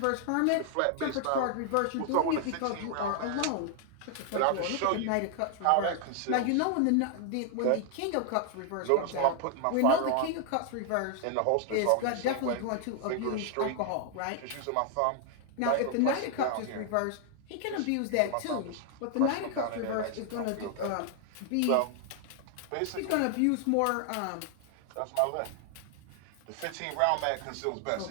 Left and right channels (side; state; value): both; different; correlation 0.00